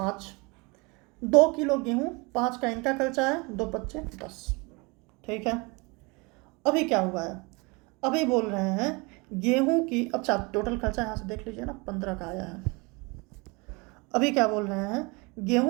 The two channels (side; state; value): left; quieter; 27.5 dB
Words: 2 किलो गेहूँ, 5 का इनका खर्चा है, 2 पच्चे 10। ठीक है। अभी क्या हुआ है, अभी बोल रहे हैं गेहूं की, अच्छा टोटल खर्चा यहाँ से देख लीजिए ना, 15 का आया है। अभी क्या बोल रहे हैं,